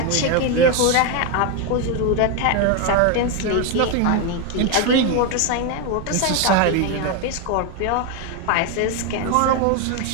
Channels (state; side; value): different; both; correlation 0.02